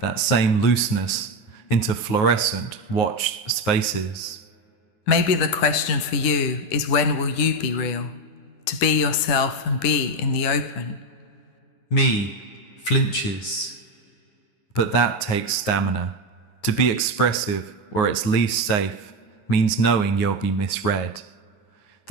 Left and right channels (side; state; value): right; late; 9.6 ms